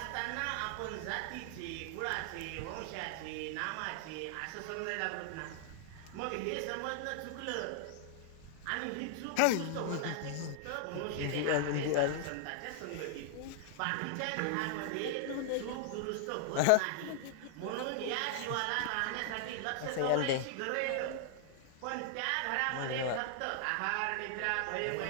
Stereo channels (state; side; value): different; both; correlation 0.00